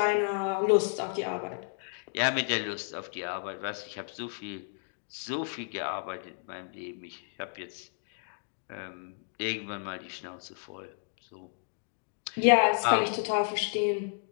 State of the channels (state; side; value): silent; right; digital silence